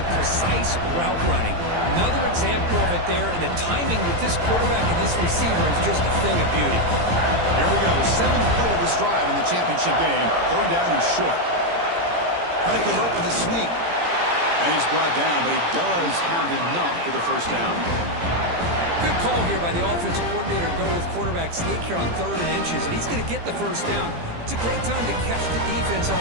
precise route running. Another example of it there, and the timing with this quarterback and this receiver is just a thing of beauty. Here we go. 7th play of this drive in the championship game. 3rd down and short. Trying to convert with a sneak. And he's brought down, but he does have enough for the 1st down. Good call here by the offensive coordinator. Go with quarterback sneak here on 3rd and inches, and he's going to get the 1st down. It's a great time to catch the defense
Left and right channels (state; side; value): late; left; 17 ms